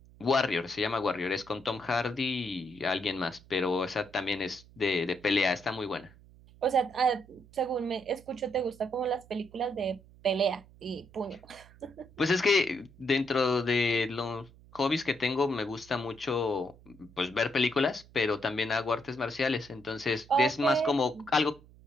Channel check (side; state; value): right; noise; hum, 24 dB below the sound